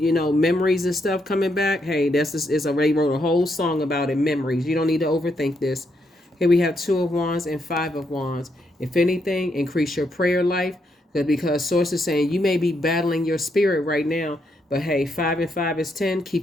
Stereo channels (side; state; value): both; normal; correlation 0.78